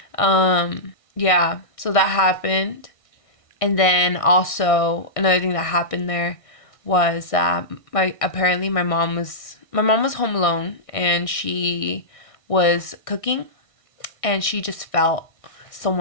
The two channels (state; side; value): late; right; 1.6 ms